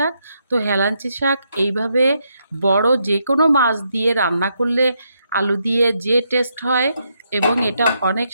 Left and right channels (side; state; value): both; inverted; correlation -0.79